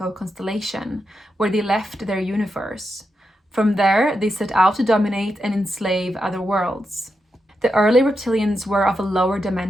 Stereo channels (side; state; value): both; normal; correlation 0.86